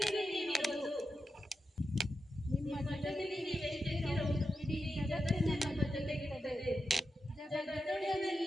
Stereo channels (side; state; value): both; normal; correlation 0.89